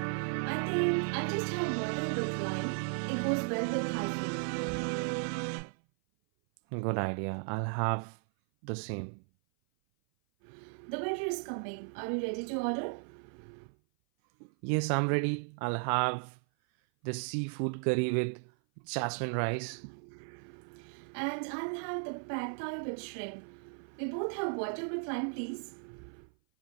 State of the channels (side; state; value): left; silent; 54 dB below the other